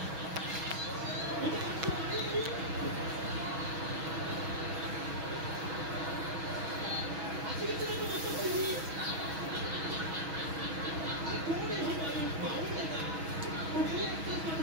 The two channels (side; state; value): left; late; 6.2 ms